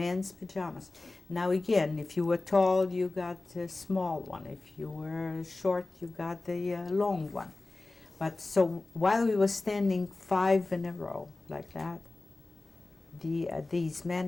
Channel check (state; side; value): quieter; right; 3.2 dB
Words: pajamas. Now again, if you were tall, you got a small one. If you were short, you got the long one. But so while we were standing 5 in a row like that, these